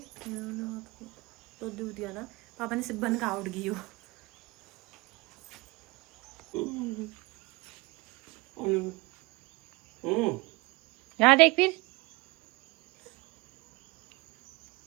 तो दूध दिया ना, पापा ने सिर्फ बन का उठ गई हो। यहाँ देख, फिर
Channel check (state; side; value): quieter; left; 24.6 dB